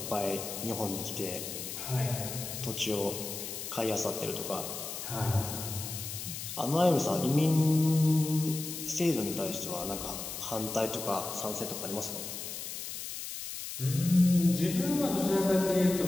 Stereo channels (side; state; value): left; noise; hiss, 7 dB below the sound